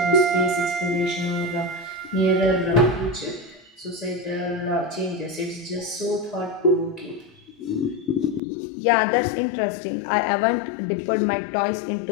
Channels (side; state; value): right; drops out; at 8.4 s